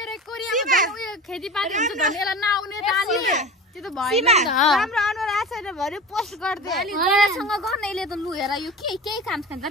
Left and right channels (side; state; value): both; normal; correlation 0.33